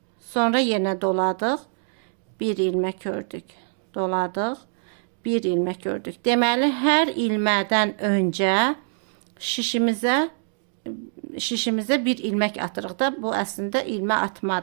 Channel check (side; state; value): left; silent; digital silence